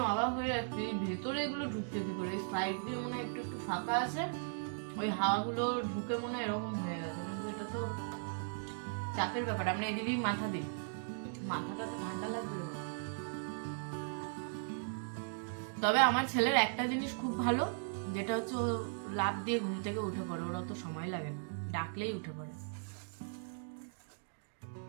অবাক হয়ে যাচ্ছি ভেতরে এগুলো ঢুকতে কি করে, সাইড দিয়ে মনে হয় একটু একটু ফাঁকা আছে, ওই হাওয়াগুলো ঢুকে মনে হয় এরকম হয়ে গেছে। কিন্তু এটা তো চাপের ব্যাপার, আমরা এদিকেই মাথা দিই, মাথাটা তো ঠান্ডা লাগবে। তবে আমার ছেলের একটা জিনিস খুব ভালো, যেটা হচ্ছে ও লাফ দিয়ে ঘুম থেকে উঠে পড়ে, ওরা তো সময় লাগে না, ডাকলেই উঠে পড়ে।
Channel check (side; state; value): left; silent; digital silence